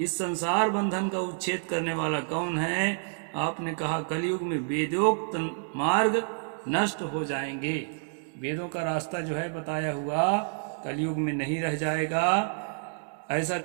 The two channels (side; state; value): left; silent; digital silence